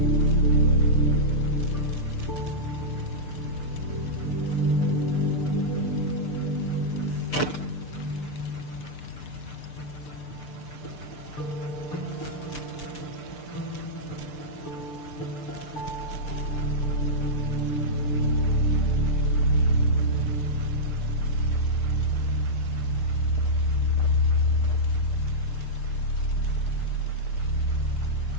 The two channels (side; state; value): right; late; 6.7 ms